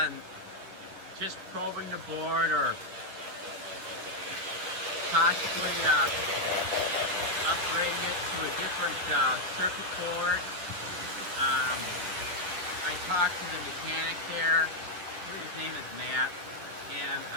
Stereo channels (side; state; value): left; late; 10 ms